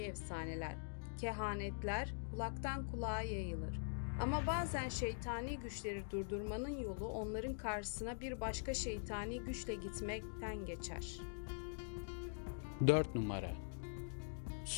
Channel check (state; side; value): silent; right; digital silence